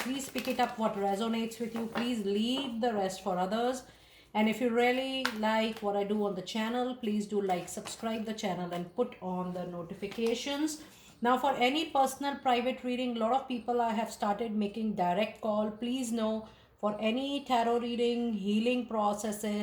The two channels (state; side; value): identical; both; correlation 1.00